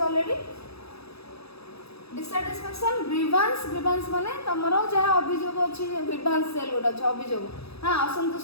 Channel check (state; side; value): late; right; 0.78 ms